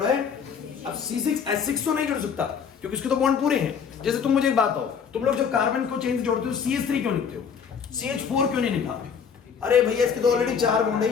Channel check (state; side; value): quieter; right; 6.8 dB